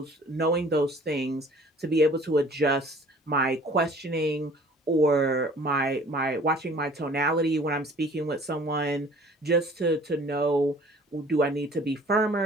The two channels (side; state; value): both; normal; correlation 0.51